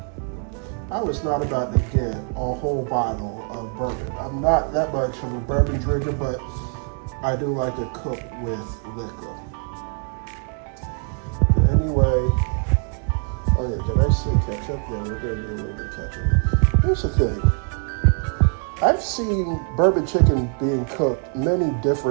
I was not about to get a whole bottle of bourbon. I'm not that much of a bourbon drinker, but I do like to cook with liquor. Anyway, oh yeah, did I see ketchup? Yeah, we're gonna do a little bit of ketchup. Here's the thing. I've seen bourbon chicken being cooked many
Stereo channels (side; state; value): left; quieter; 38.8 dB